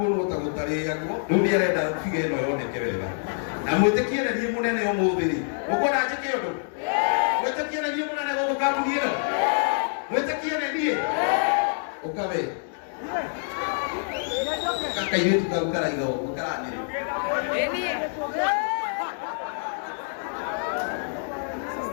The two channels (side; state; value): right; silent; digital silence